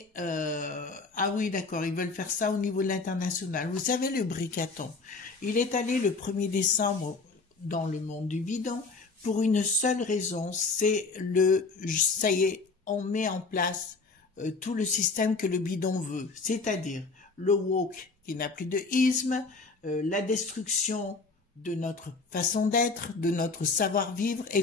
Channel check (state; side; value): quieter; right; 4.0 dB